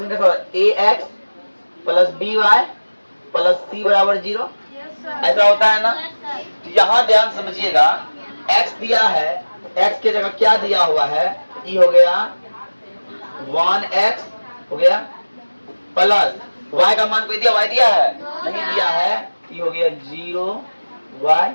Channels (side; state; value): both; inverted; correlation -1.00